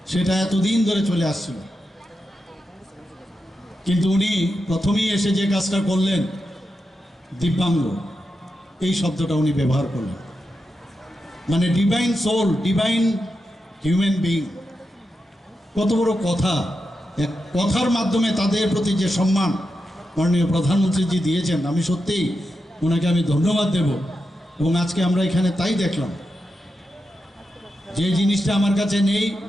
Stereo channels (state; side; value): normal; both; correlation 0.88